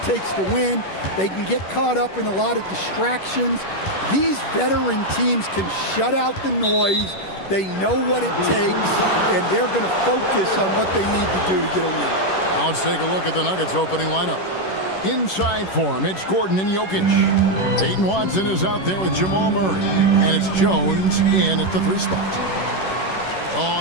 takes to win. They can get caught up in a lot of distractions. These veteran teams can shut out the noise. They know what it takes, and they're going to focus on what they need to do to get a win. Now let's take a look at the Nuggets opening lineup. Inside for him, it's Gordon and Jokic. Peyton Watson is out there with Jamal Murray. And it's Jones in at the 3 spot.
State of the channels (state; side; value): late; right; 11 ms